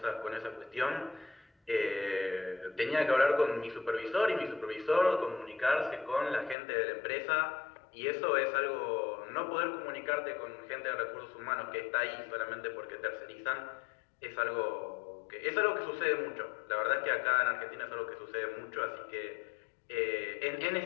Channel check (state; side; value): drops out; right; at 6.6 s